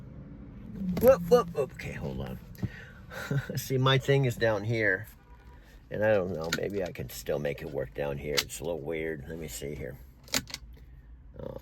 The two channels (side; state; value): both; identical; correlation 1.00